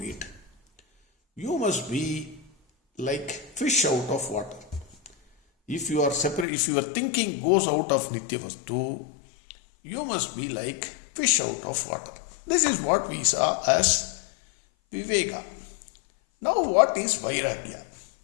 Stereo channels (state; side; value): drops out; right; at 6.5 s